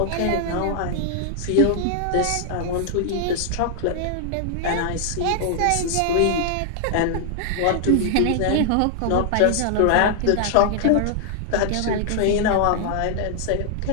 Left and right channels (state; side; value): different; both; correlation 0.00